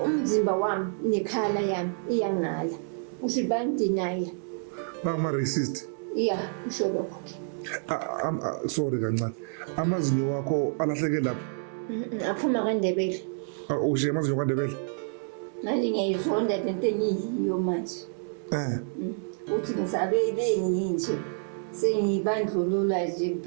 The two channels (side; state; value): left; silent; 59 dB below the other